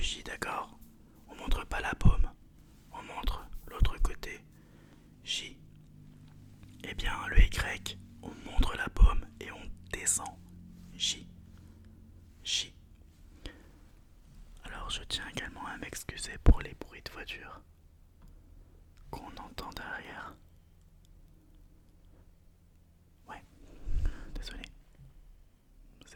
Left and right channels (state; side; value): identical; both; correlation 1.00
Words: d'accord. On montre pas la paume. On montre l'autre côté. J. Eh bien, le Y, on montre la paume et on descend. J. J. Alors, je tiens également à m'excuser pour les bruits de voiture qu'on entend derrière. Ouais, désolé.